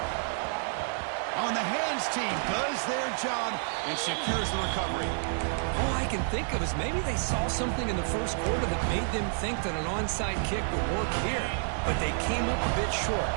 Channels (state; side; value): silent; left; digital silence